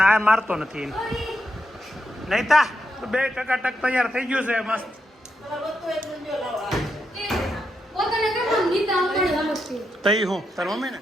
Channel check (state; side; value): normal; both; correlation 0.83